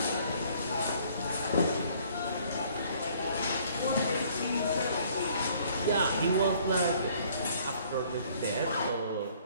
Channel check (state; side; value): inverted; both; correlation -0.59